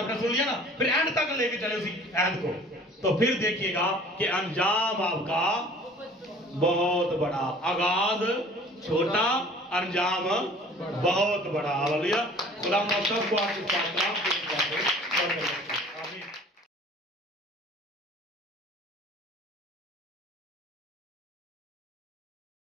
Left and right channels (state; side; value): normal; both; correlation 0.49